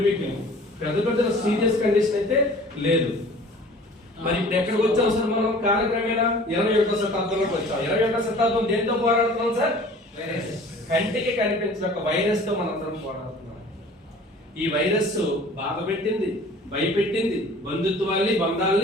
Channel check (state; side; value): normal; both; correlation 0.47